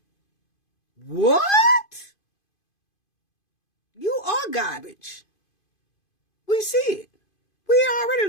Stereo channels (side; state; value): right; late; 2.5 ms